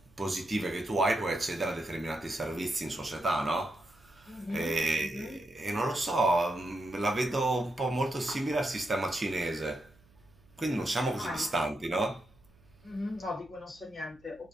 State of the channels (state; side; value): noise; right; hum, 29 dB below the sound